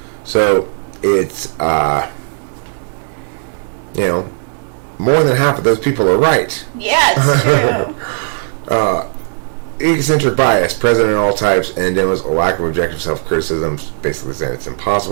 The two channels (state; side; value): silent; left; 65 dB below the other